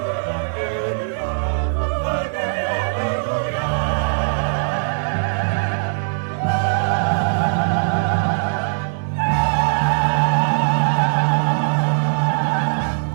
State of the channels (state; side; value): silent; left; digital silence